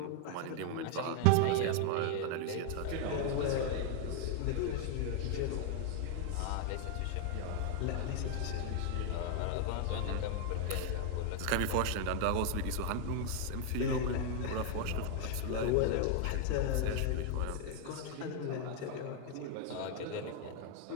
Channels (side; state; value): both; different; correlation 0.00